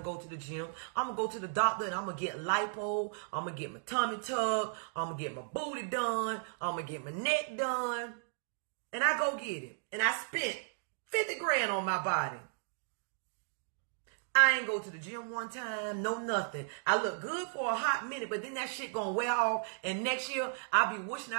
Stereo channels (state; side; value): silent; left; digital silence